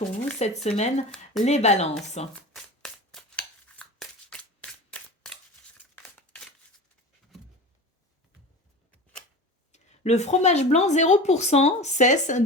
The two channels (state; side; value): normal; both; correlation 0.32